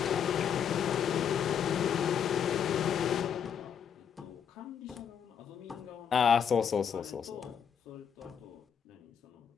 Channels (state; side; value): quieter; right; 7.9 dB